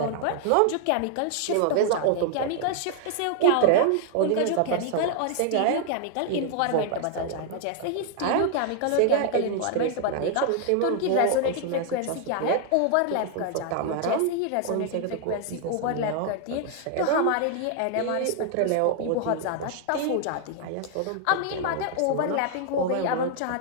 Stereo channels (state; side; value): different; both; correlation 0.00